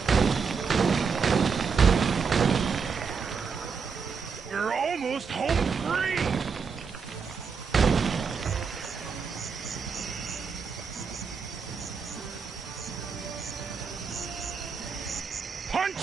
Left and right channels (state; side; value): quieter; left; 5.7 dB